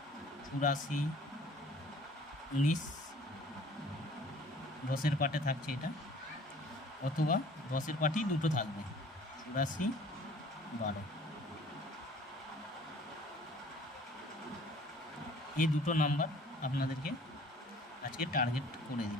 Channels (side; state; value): both; normal; correlation 0.51